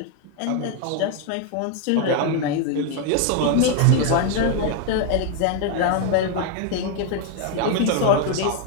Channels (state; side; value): different; both; correlation 0.01